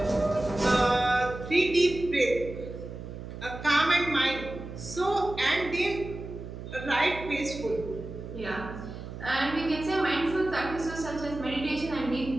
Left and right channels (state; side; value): noise; right; hum, 10 dB below the sound